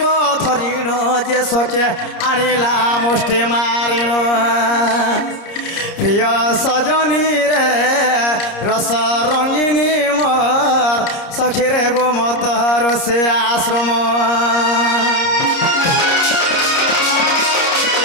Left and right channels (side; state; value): right; late; 30 ms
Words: धरिण जे सके आनिला मुष्टि मारिण प्रिय सजनी रे रस रंगिनी मोर सखीरे गो मत ऋषि आश्रम